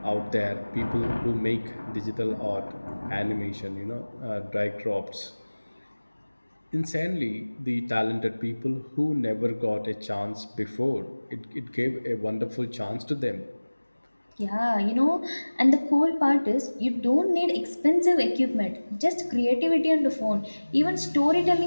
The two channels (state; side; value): inverted; both; correlation -1.00